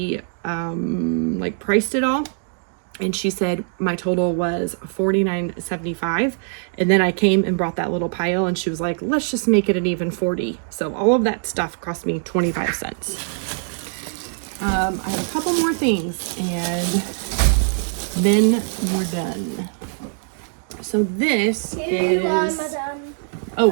like priced it all, and she said my total was $49.75, and then I came and brought that little pile, and she was like, let's just make it an even 40. So all of that stuff cost me 25 cents. I have a couple more things and then we're done. So this is, oh,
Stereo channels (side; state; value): left; silent; digital silence